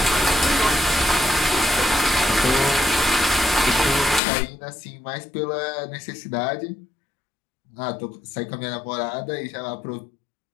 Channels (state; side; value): drops out; right; at 4.2 s